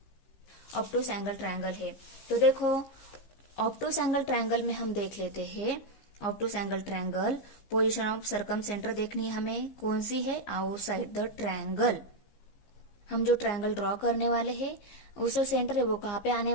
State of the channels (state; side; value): late; right; 15 ms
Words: ऑब्टूस एंगल ट्रायंगल है। तो देखो, ऑब्टूस एंगल ट्रायंगल में हम देख लेते हैं, obtuse angle triangle position of circumcentre देखनी है हमें, कौन सी है, आउटसाइड द ट्रायंगल। हम जो ट्रायंगल ड्रॉ करने वाले हैं उसका सेंटर है वो कहाँ पे आने